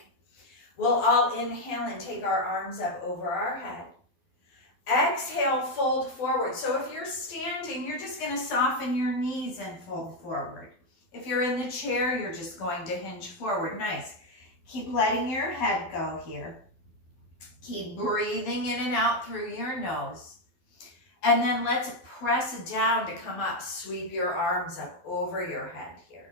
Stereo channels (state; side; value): late; right; 12 ms